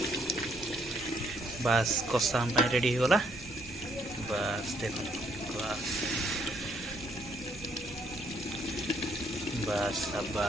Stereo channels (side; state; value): both; normal; correlation 0.69